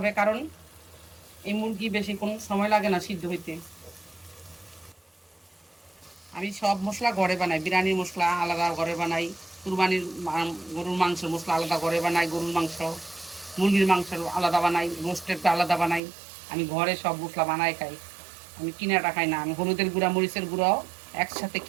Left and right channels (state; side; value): drops out; left; at 16.0 s